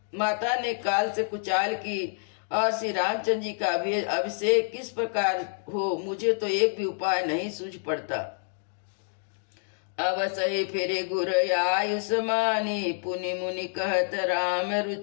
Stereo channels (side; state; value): right; silent; digital silence